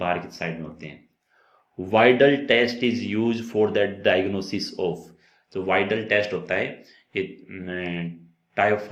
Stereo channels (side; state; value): both; identical; correlation 1.00